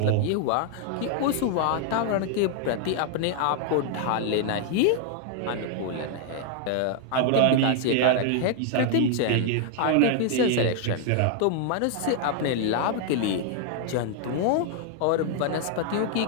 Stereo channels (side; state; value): both; different; correlation 0.00